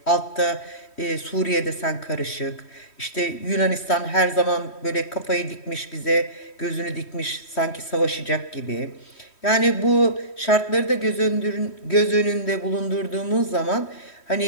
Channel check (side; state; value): right; late; 3.1 ms